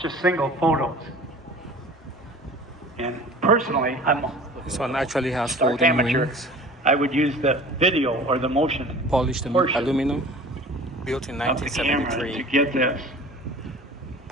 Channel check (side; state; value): both; normal; correlation 0.43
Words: single photos. And personally, I'm This one actually has stark folding amateur. wings, I would use the video or the motion polished portion aluminum. built in of the camera to 1973, get this.